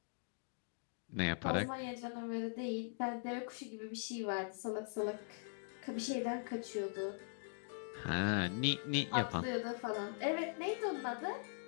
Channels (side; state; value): right; silent; digital silence